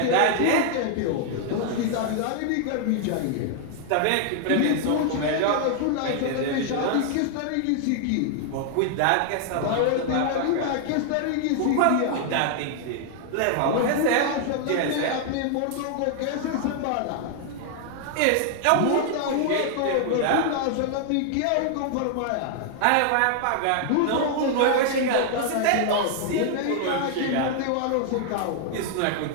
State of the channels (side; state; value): both; different; correlation 0.00